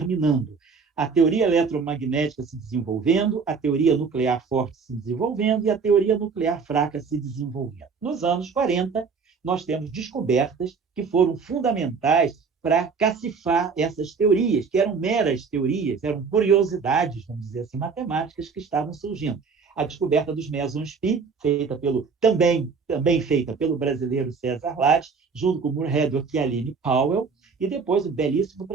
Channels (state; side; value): quieter; left; 5.2 dB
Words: a teoria eletromagnética se desenvolvendo, a teoria nuclear forte se desenvolvendo e a teoria nuclear fraca se desenvolvendo. Nos anos 40, nós temos descobertas que foram fundamentais para cacifar essas teorias, que eram meras teorias, eram curiosidades, vamos dizer assim, matemáticas que estavam surgindo. A descoberta dos mesons π, também feita pelo brasileiro César Lattes, junto com Moorhead e Aline Powell, e depois o belíssimo